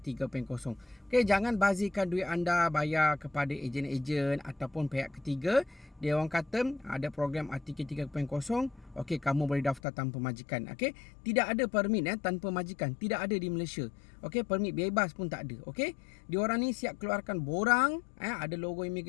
3.0. Okey, jangan bazirkan duit anda bayar kepada ejen-ejen ataupun pihak ketiga. Dia orang kata ada program RTK 3.0. Okey, kamu boleh daftar tanpa majikan. Okey, tidak ada permit tanpa majikan. Tidak ada di Malaysia. Okey, permit bebas pun tak ada. Okey, diorang ni siap keluarkan borang, ada logo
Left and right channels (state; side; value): drops out; right; at 9.8 s